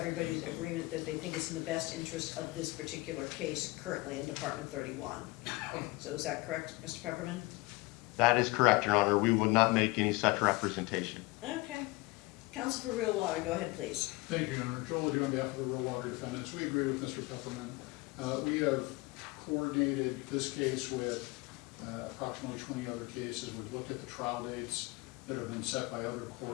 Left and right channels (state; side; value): quieter; right; 23.6 dB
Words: agreement that they think it's in the best interest of this particular case currently in Department 31. So is that correct, Mr. Pepperman? That is correct, Your Honor. We would not make any such representation. Okay. Counsel for Real Water, go ahead, please. Thank you, Your Honor. Joel Odou on behalf of the real water defendants. We agree with Mr. Pepperman. We have coordinated this case with approximately 20 other cases. We've looked at the trial dates that have been set by other